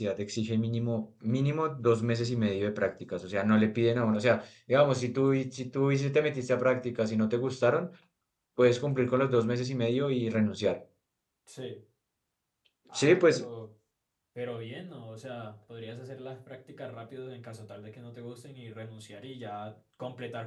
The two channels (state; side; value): identical; both; correlation 1.00